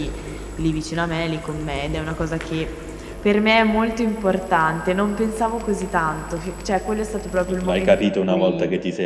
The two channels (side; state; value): both; identical; correlation 1.00